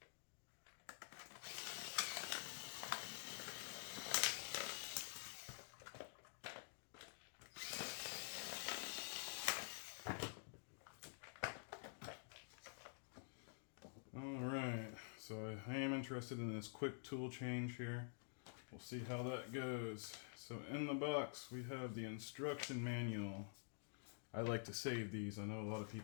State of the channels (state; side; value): silent; right; digital silence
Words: Alright, so I am interested in this quick tool change here. We'll see how that goes. So in the box we have the instruction manual. I like to save these. I know a lot of